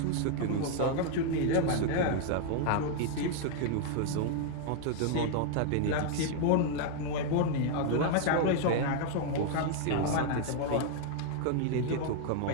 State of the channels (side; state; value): both; different; correlation 0.00